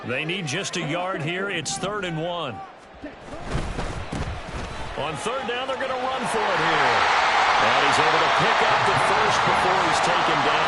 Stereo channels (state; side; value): identical; both; correlation 1.00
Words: They need just a yard here. It's 3rd and 1. On 3rd down, they're going to run for it here. And he's able to pick up the first before he's taken